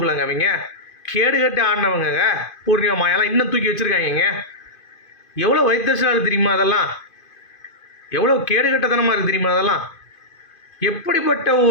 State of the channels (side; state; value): right; late; 2.5 ms